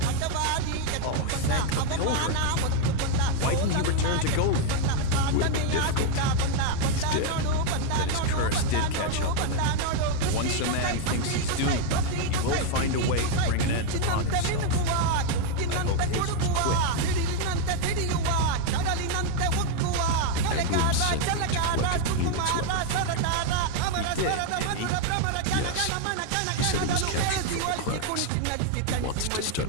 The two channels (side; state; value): both; different; correlation 0.01